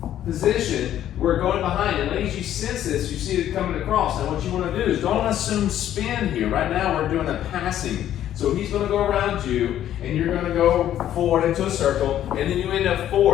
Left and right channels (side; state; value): right; quieter; 11.5 dB